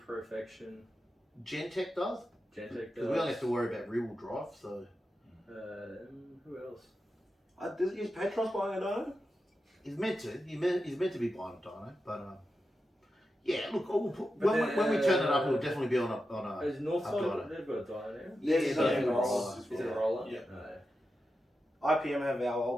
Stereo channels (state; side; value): normal; both; correlation 0.90